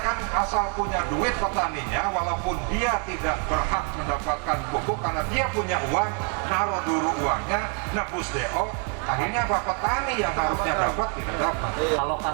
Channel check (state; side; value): quieter; left; 39.8 dB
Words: asal punya duit petaninya, walaupun dia tidak berhak mendapatkan pupuk karena dia punya uang, naruh dulu uangnya, nebus DO, akhirnya apa? Petani yang harusnya dapat tidak dapat.